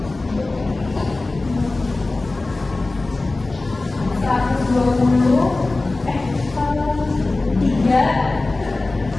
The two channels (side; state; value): right; quieter; 3.2 dB